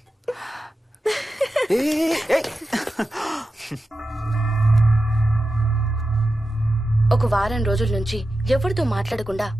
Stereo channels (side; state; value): both; normal; correlation 0.92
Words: ఒక వారం రోజుల నుంచి ఎవరితో మాట్లాడకుండా